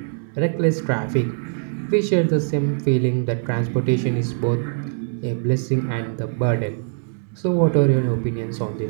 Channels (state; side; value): silent; left; digital silence